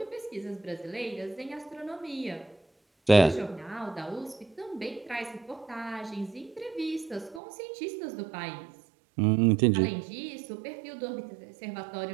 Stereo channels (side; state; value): left; drops out; at 7.4 s